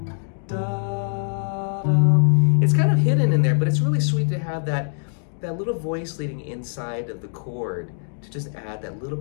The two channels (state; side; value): silent; right; digital silence